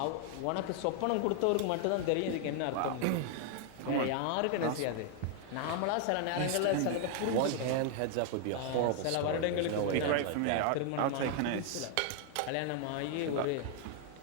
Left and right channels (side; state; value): both; different; correlation 0.00